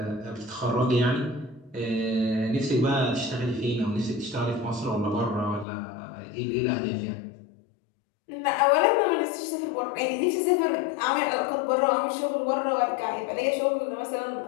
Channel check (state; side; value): drops out; right; at 5.7 s